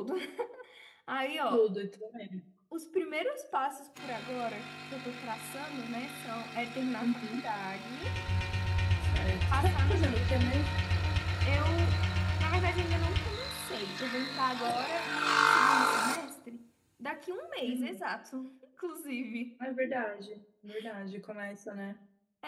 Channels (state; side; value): identical; both; correlation 1.00